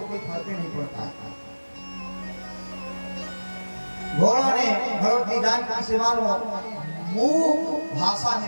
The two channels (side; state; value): both; inverted; correlation -1.00